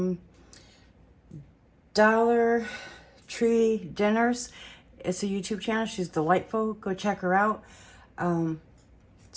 Dollar Tree Dinners. It's a YouTube channel. She's delightful. Go check her out.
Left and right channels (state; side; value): identical; both; correlation 1.00